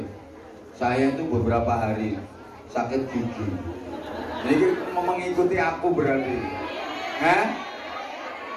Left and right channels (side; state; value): both; identical; correlation 1.00